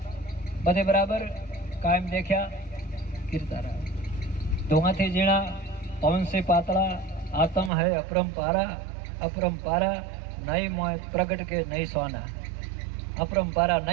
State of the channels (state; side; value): drops out; left; at 7.7 s